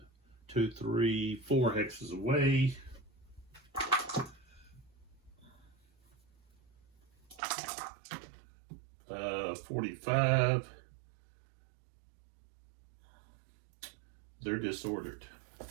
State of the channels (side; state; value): left; drops out; at 7.4 s